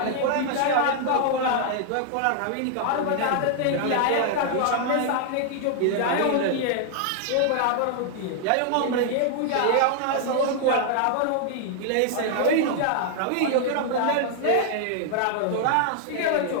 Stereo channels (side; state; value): both; different; correlation 0.00